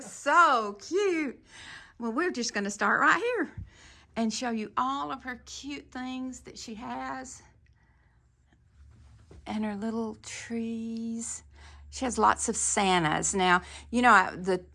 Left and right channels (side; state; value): both; identical; correlation 1.00